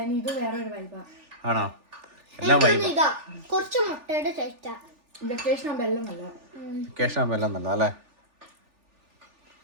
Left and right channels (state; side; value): late; left; 3.4 ms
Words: ഇത് വേറെ ഒരു വൈബാ. ആണോ? എല്ലാം വൈബ്. ഇതാ കുറച്ച് മുട്ടയുടെ ടേസ്റ്റാ. വെക്കേഷൻ ആകുമ്പോ എല്ലാം നല്ല. വെക്കേഷൻ ആകുമ്പോ എല്ലാം നല്ല അല്ലേ?